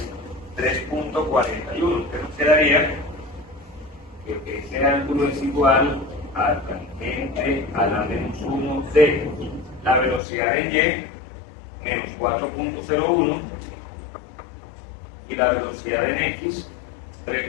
3.41. Entonces nos quedaría que ese ángulo es igual al tangente a la menos 1 de la velocidad en y menos 4.01 y la velocidad en x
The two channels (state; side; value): drops out; right; at 10.2 s